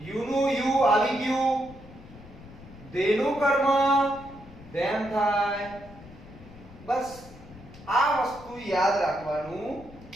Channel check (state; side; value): noise; left; rumble, 19 dB below the sound